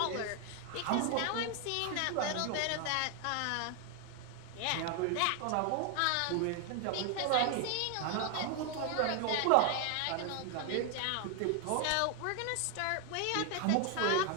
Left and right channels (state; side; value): different; both; correlation 0.00